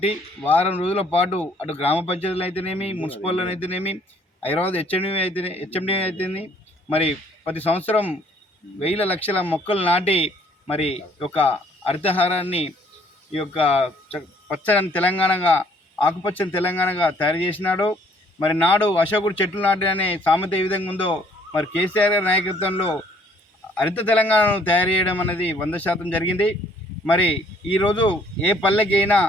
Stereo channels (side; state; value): both; normal; correlation 0.61